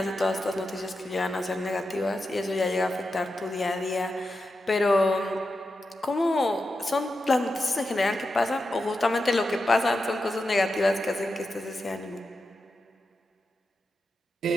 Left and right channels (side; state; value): both; normal; correlation 0.89